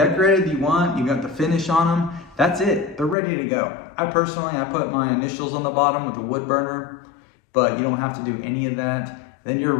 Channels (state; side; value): drops out; right; at 3.2 s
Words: you got the finish on them, that's it. They're ready to go. I put my initials on the bottom with a wood burner, but you don't have to do any of that. Then you're